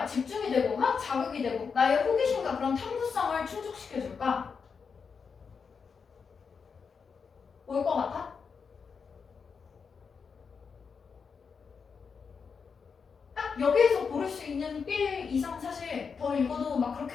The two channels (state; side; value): quieter; right; 5.8 dB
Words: 집중이 되고 막 자극이 되고 나의 호기심과 그런 탐구성을 충족시켜줄까? 뭘 것 같아? 딱 여기에서 고를 수 있는 빌 이상 사실 더 읽어도 막